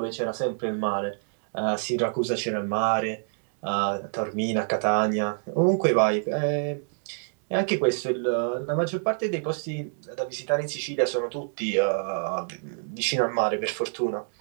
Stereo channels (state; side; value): silent; left; digital silence